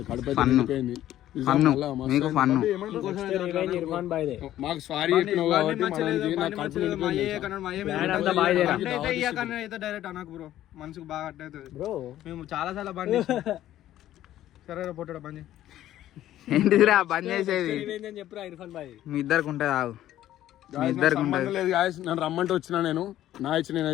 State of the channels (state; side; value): quieter; right; 13.0 dB